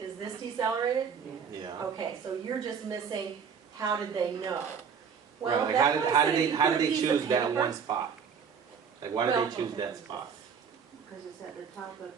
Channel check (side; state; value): left; quieter; 6.8 dB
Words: this decelerated? Yeah. Okay, so you're just missing. How did they know? Well, like how did they choose that one spot? Like why did they choose that spot? Because it's at the top